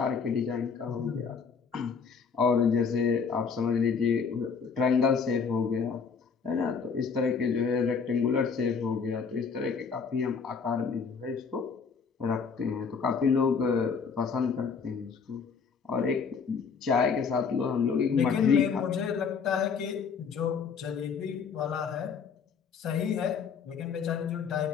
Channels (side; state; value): right; quieter; 5.8 dB